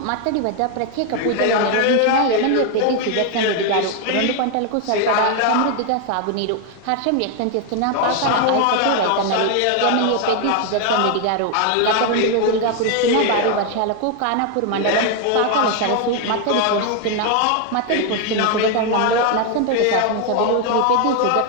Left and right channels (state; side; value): different; both; correlation 0.01